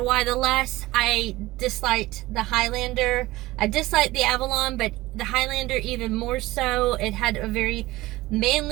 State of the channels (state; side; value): quieter; left; 18.5 dB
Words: Y, the less I disliked the Highlander. I disliked the Avalon, but the Highlander even more so. It had a very